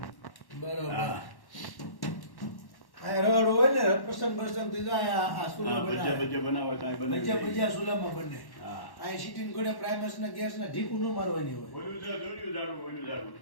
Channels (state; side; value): late; right; 1.1 ms